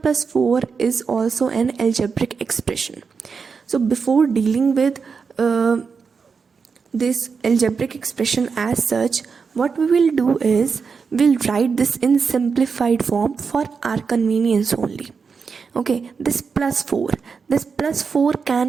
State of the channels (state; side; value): quieter; left; 5.5 dB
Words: 4 is also an algebraic expression. So before dealing with this algebraic expression as such, what we will do is we'll write this in simplified form for our convenience only. Okay, this plus 4